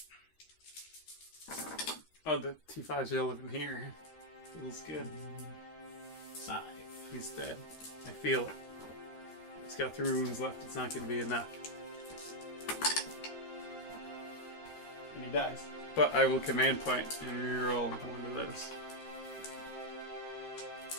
Oh, the T5's relevant here. Feels good. 5. He's dead. I feel it. He's got 3 wounds left. It's not going to be enough. And he dies. But I will command point and reroll one of those.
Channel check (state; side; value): late; right; 13 ms